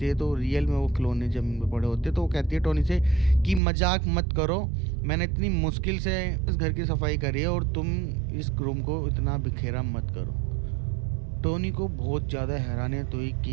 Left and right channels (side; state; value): left; drops out; at 3.6 s